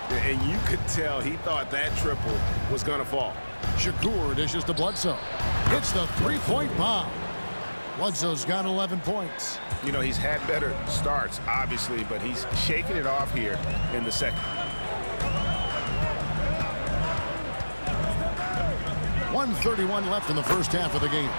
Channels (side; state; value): both; inverted; correlation -1.00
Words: And you could tell he thought that triple was going to fall. Shakur dishes to Bledsoe. Hits the 3-point bomb. Bledsoe's got 11 points. You know, he's had better starts, obviously, but he's shaking it off here in the second. 1:31 left in the first half of the game.